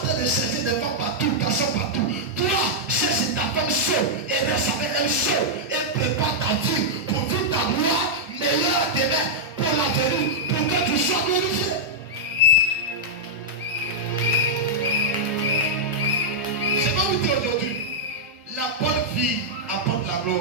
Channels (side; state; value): both; normal; correlation -0.06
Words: train de chercher des femmes partout, garçons partout. Toi, cherche ta femme seule et reste avec elle seule. Et prépare ta vie pour vivre ta gloire meilleure demain pour l'avenir, pour que tu sois glorifié. Je vais vous dire aujourd'hui, la bonne vie apporte la